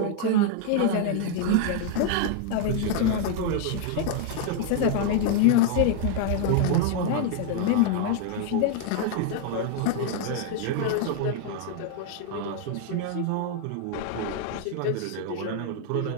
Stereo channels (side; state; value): both; different; correlation 0.00